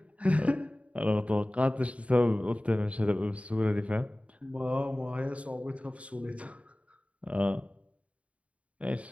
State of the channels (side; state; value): left; late; 0.065 ms